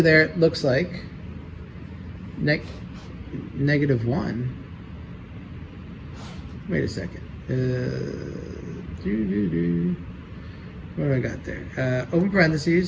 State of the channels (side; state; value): both; identical; correlation 1.00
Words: there looks like negative 1. Wait a second. What do I got there? Open